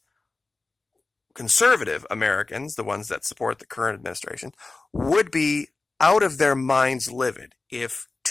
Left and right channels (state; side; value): quieter; right; 3.5 dB